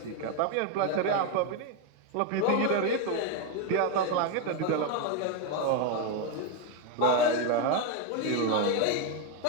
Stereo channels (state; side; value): different; both; correlation 0.01